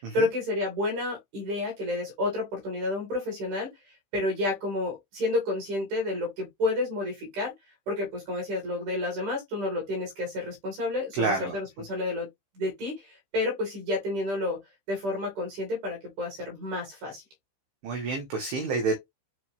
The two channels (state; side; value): late; left; 15 ms